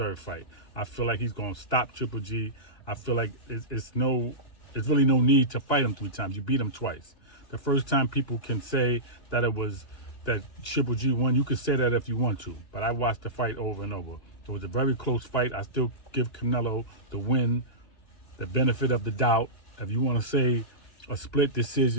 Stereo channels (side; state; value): right; late; 2.7 ms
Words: fight. I feel like he's going to stop Triple G. I feel like it's really no need to fight him 3 times. You beat him twice. The first time people can say that that Triple G won, you can say that if you want to, but I watched the fight over and over. It was a very close fight. I still give Canelo the win, the benefit of the doubt. If you want to say a split